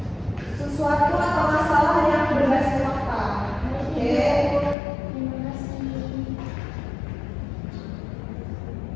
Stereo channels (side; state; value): right; drops out; at 4.8 s